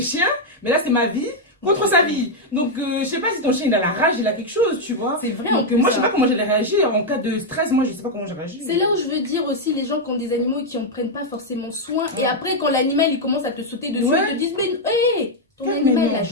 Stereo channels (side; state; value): both; normal; correlation 0.00